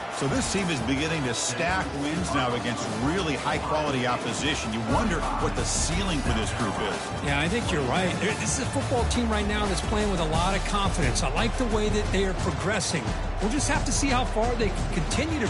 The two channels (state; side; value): identical; both; correlation 1.00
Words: So this team is beginning to stack wins now against really high-quality opposition. You wonder what the ceiling for this group is. Yeah, I think you're right. This is a football team right now that's playing with a lot of confidence. I like the way that they are progressing. We'll just have to see how far they can continue to